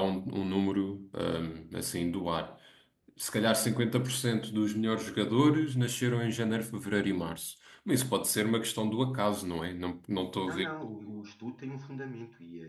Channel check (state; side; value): identical; both; correlation 1.00